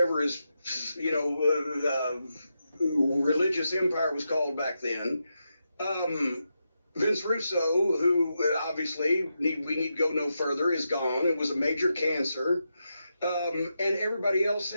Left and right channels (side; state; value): both; inverted; correlation -0.86